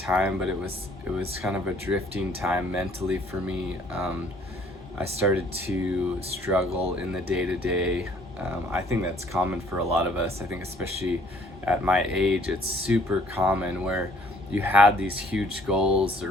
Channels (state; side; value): normal; both; correlation 0.60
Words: but it was kind of a drifting time mentally for me. I started to struggle in the day to day. I think that's common for a lot of us. I think especially at my age, it's super common where you had these huge goals